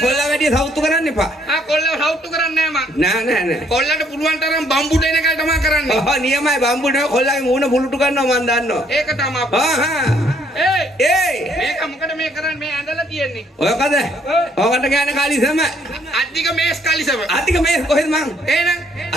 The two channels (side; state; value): both; normal; correlation 0.66